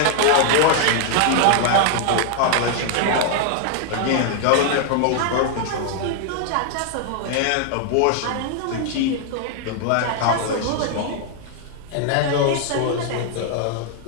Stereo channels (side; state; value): both; different; correlation 0.00